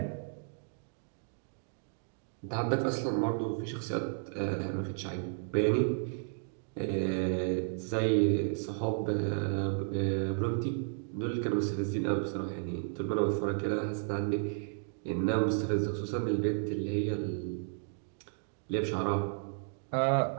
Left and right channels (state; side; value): silent; left; digital silence